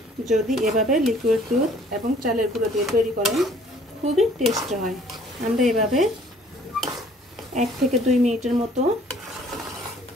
যদি এভাবে লিকুইড দুধ এবং চালের গুঁড়ো দিয়ে তৈরি করেন খুবই টেস্ট হয়। আমরা এভাবে 1 থেকে 2 মিনিটের মতো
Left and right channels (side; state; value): both; normal; correlation 0.57